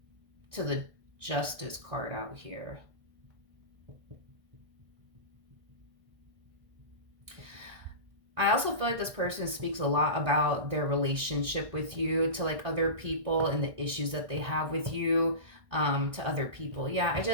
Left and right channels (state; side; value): late; left; 1.6 ms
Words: to the Justice card out here. I also feel like this person speaks a lot about their relationship with you to, like, other people, and the issues that they have with you, to other people. Yeah, I